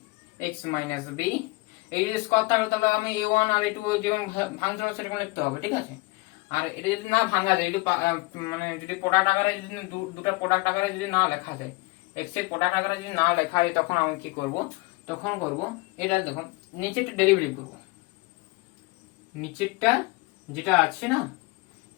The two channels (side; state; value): right; quieter; 25.2 dB